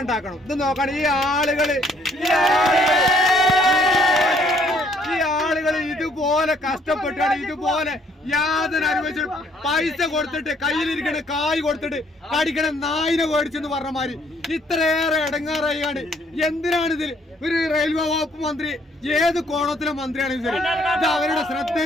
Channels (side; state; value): both; normal; correlation 0.65